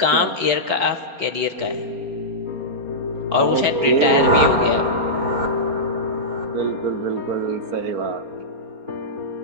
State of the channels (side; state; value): left; late; 4.1 ms